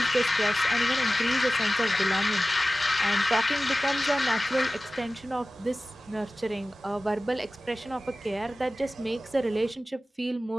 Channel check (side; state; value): both; normal; correlation 0.96